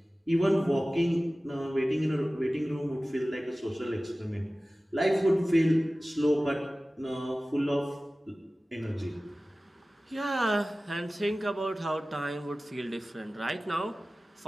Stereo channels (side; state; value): both; normal; correlation 0.97